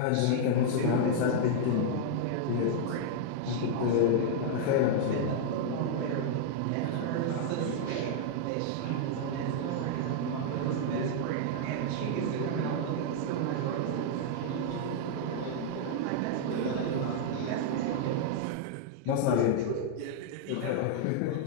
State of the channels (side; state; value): both; different; correlation -0.01